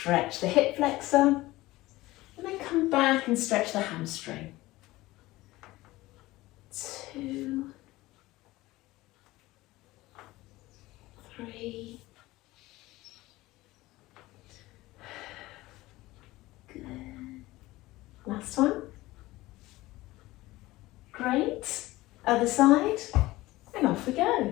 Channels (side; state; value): right; quieter; 18.6 dB